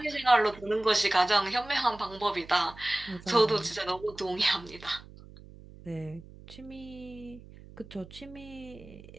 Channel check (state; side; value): noise; right; hum, 19 dB below the sound